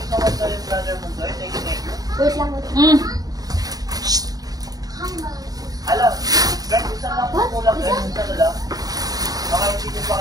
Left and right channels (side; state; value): left; late; 0.18 ms